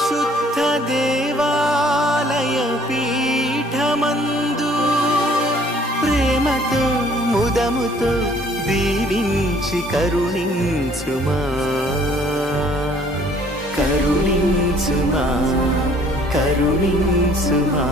దేవాలయ పీఠమందు ప్రేమతో ముదముతో దీవించి కరుణించుమా కరుణించుమా కరుణించుమా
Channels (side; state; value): both; normal; correlation 0.58